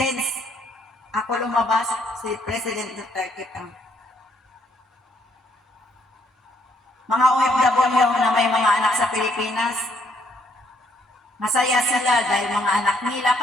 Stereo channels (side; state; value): both; normal; correlation 0.69